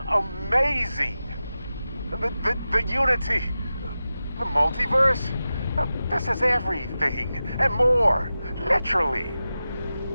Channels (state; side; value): inverted; both; correlation -0.93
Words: amazing! The unity, the multiverse, this is everything and more, literally.